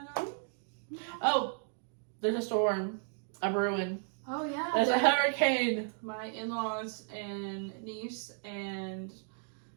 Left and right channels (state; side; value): silent; left; 55 dB below the other